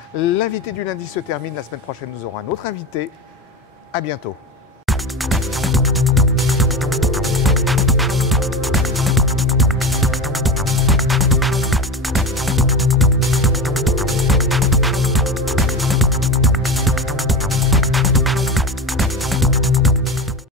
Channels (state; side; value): normal; both; correlation 0.24